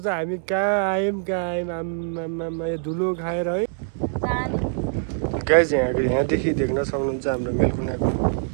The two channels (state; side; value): silent; left; digital silence